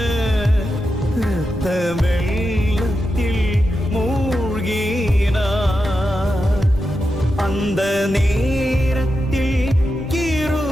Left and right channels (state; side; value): normal; both; correlation 0.89